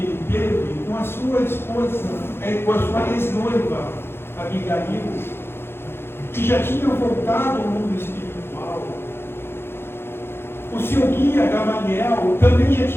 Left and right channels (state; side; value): late; right; 0.11 ms